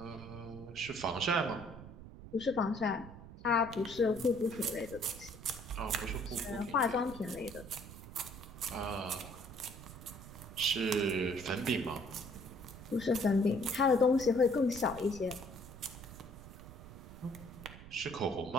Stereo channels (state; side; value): noise; right; rumble, 15 dB below the sound